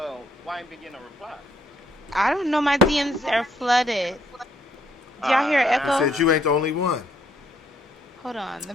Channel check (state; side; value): normal; both; correlation 0.70